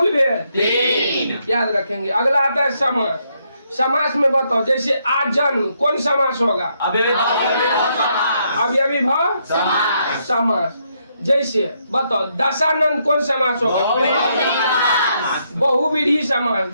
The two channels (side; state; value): both; inverted; correlation -0.76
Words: भेद 3 याद रखेंगे। अगला आता है समास। समास में बताओ जैसे आजन्म कौन समास होगा, अव्ययीभाव समास। जैसे बताओ दशानंद कौन समास होगा, बहुव्रीहि समास।